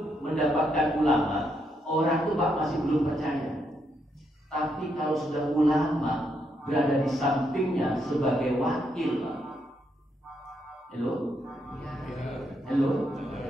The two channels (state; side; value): normal; both; correlation 0.78